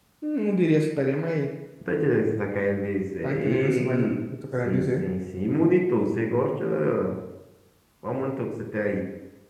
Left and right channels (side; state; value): both; identical; correlation 1.00